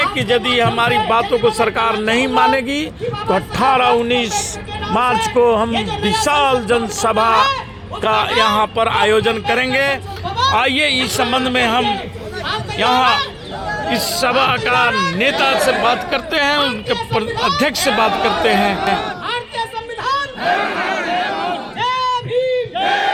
कि यदि हमारी बातों को सरकार नहीं मानेगी तो 18-19 मार्च को हम विशाल जनसभा का यहाँ पर आयोजन करेंगे। आइए इस संबंध में हम यहाँ इस सभा का नेता से बात करते हैं, उनके अध्यक्ष से बात करते हैं।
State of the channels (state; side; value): identical; both; correlation 1.00